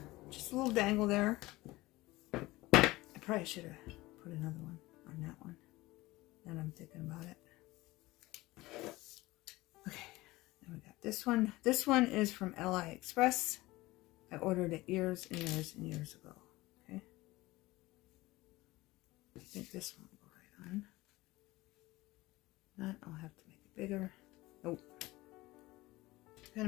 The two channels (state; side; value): quieter; right; 19.6 dB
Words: Just a little dangle there. I probably should have put another one on that one. Now I'm thinking about it. Okay, then we got this one. This one is from AliExpress. I ordered it years and years and years ago. Okay. I think this one will go right on. Not, I'll have to make it bigger. Nope. Gotta